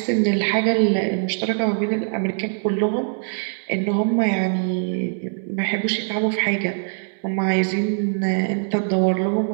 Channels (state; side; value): silent; left; digital silence